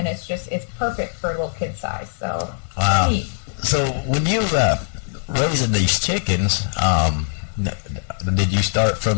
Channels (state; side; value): silent; right; digital silence